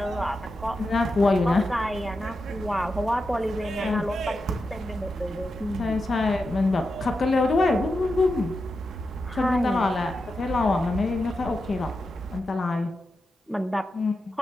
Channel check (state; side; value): normal; both; correlation 0.89